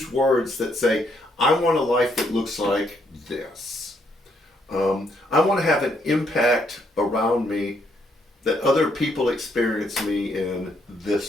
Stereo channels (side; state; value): both; normal; correlation 0.73